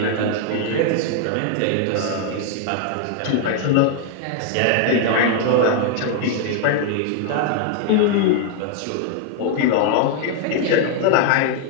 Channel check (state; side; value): different; both; correlation 0.00